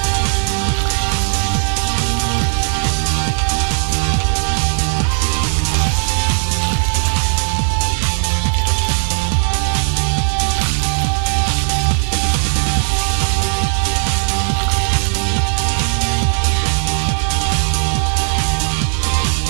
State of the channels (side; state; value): left; silent; 58 dB below the other